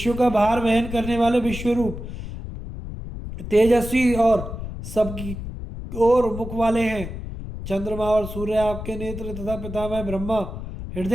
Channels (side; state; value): left; noise; rumble, 9 dB below the sound